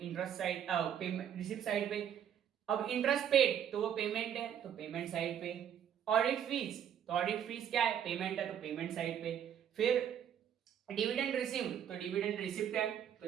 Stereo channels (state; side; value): quieter; left; 9.2 dB